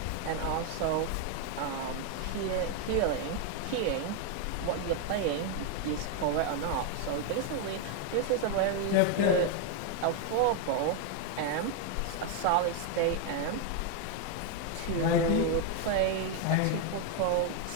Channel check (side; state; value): both; different; correlation 0.01